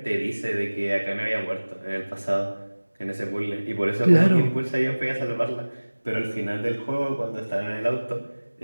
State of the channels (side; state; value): both; inverted; correlation -1.00